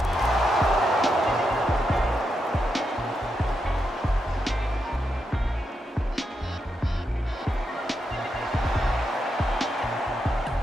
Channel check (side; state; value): both; normal; correlation 0.84